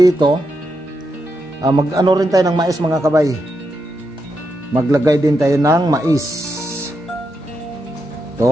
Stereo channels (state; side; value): normal; both; correlation 0.84